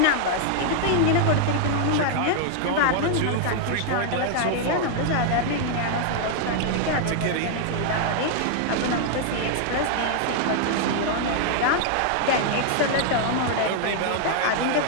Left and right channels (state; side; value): different; both; correlation 0.00